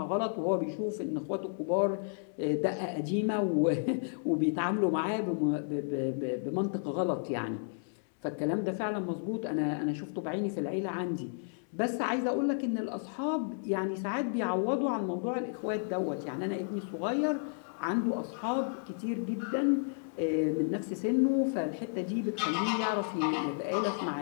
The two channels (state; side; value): silent; right; digital silence